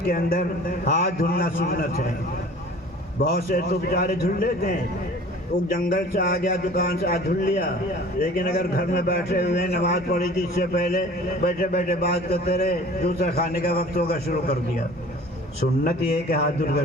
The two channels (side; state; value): both; normal; correlation 0.45